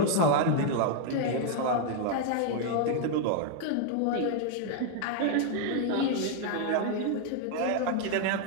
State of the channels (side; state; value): both; different; correlation 0.00